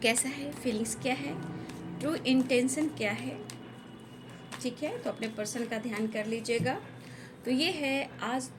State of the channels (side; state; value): both; identical; correlation 1.00